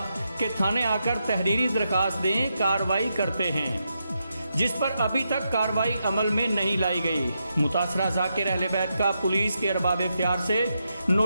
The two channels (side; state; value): both; inverted; correlation -0.84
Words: کہ تھانے آ کر تحریری درخواست دیں، کارروائی کرتے ہیں، جس پر ابھی تک کارروائی عمل میں نہیں لائی گئی۔ متاثرہ ذاکر اہل بیت کا پولیس کے ارباب اختیار سے